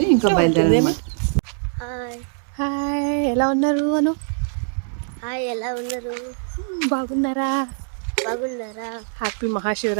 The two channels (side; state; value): left; silent; 64 dB below the other